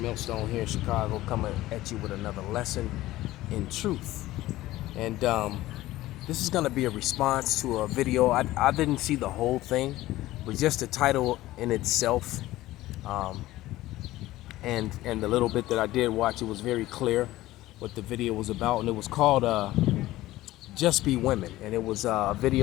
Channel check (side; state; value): right; quieter; 16.5 dB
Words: here in Chicago, coming at you with another lesson in truth. And this is going to be a response to a video. I didn't see the whole thing, but just the title in itself, and the little bit that I did watch, it was very clear what the video was about, and it was called "Just Be Women," and it was a